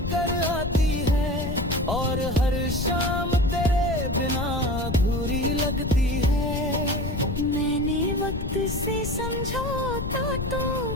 आती है, और हर शाम तेरे बिना अधूरी लगती है। मैंने वक्त से समझौता तो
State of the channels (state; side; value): noise; left; rumble, 4 dB below the sound